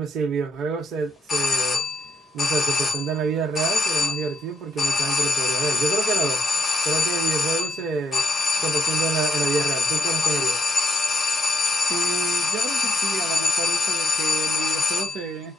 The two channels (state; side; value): normal; both; correlation 0.74